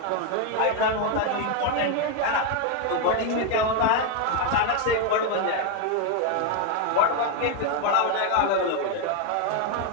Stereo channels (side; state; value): both; different; correlation 0.01